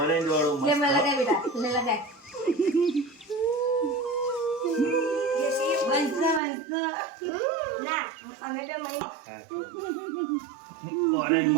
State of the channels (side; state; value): left; drops out; at 6.4 s